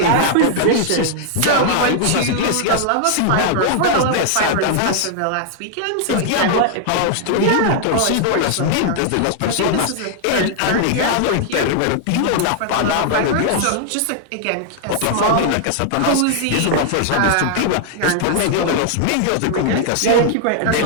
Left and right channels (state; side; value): different; both; correlation -0.01